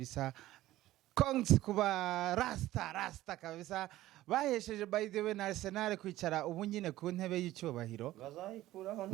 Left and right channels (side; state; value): left; quieter; 15.5 dB